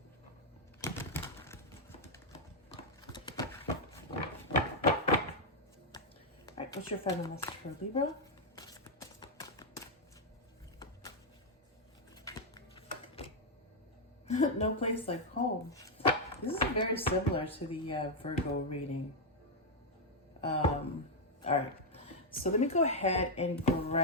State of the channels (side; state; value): both; normal; correlation 0.00